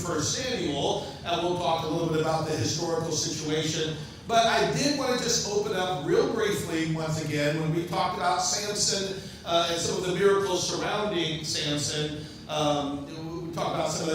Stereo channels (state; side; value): identical; both; correlation 1.00